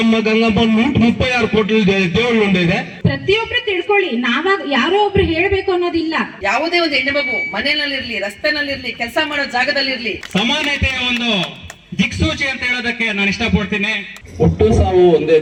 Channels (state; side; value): identical; both; correlation 1.00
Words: ಗಂಗಮ್ಮ 136 ಕೋಟಿ ದೇವಳು ಇದೆ. ಪ್ರತಿಯೊಬ್ರು ತಿಳ್ಕೊಳ್ಳಿ, ನಾವಾಗ ಯಾರೋ ಒಬ್ರು ಹೇಳ್ಬೇಕು ಅನ್ನೋದಿಲ್ಲ. ಯಾವುದೇ ಒಂದು ಹೆಣ್ಣು ಮಗು ಮನೆಯಲ್ಲಿರ್ಲಿ, ರಸ್ತೆನಲ್ಲಿರ್ಲಿ, ಕೆಲಸ ಮಾಡೋ ಜಾಗದಲ್ಲಿರ್ಲಿ ಸಮಾನತೆಯ ಒಂದು ದಿಕ್ಸೂಚಿ ಅಂತ ಹೇಳೋದಕ್ಕೆ ನಾನು ಇಷ್ಟಪಡ್ತೀನಿ. ಹುಟ್ಟು ಸಾವು ಒಂದೇ